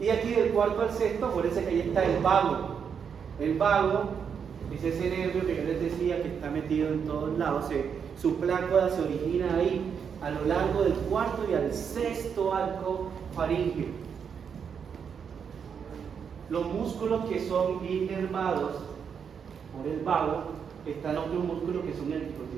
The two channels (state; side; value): quieter; left; 7.0 dB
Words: aquí del cuarto al sexto, acuérdense que ahí está el vago. El vago es ese nervio que yo les decía que está metido en todos lados. Su plácoda se origina ahí, a lo largo del cuarto y al sexto arco faríngeo. Los músculos que son inervados por el vago, están otros músculos que son el